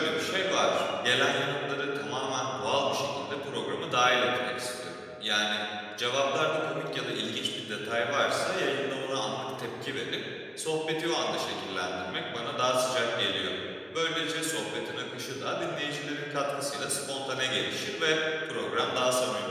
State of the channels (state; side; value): identical; both; correlation 1.00